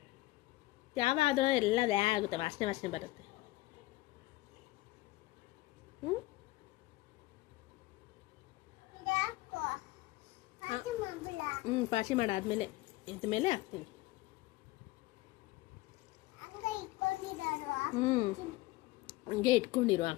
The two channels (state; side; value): quieter; right; 19.1 dB